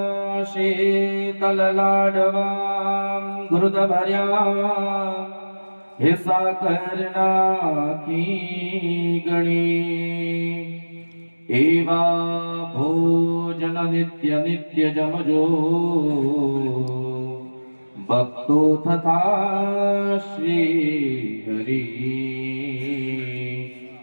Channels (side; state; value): both; inverted; correlation -1.00